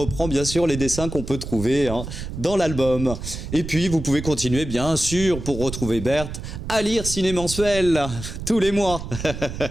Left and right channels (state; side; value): noise; right; rumble, 8 dB below the sound